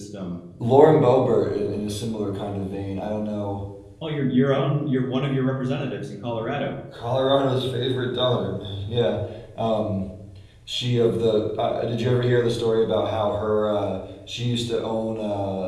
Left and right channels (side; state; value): both; identical; correlation 1.00